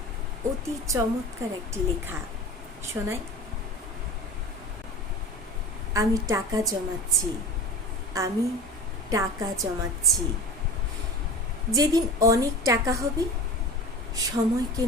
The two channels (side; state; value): both; normal; correlation 0.33